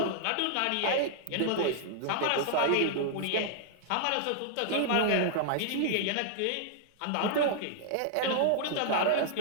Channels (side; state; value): both; different; correlation -0.01